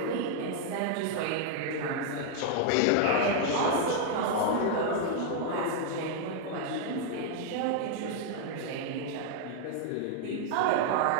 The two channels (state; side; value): different; both; correlation 0.00